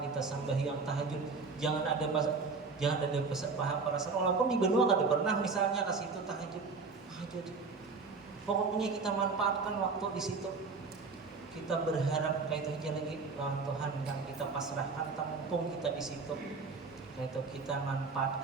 kita sembahyang tahajud. Jangan ada perasaan walaupun di benua kada pernah misalnya ke situ tahajud. Pokoknya kita manfaatkan waktu di situ. Kita berharap kayak itu aja lagi lawan Tuhan yang kita pasrahkan, tampung kita di situ. Itu kita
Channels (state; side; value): quieter; left; 4.4 dB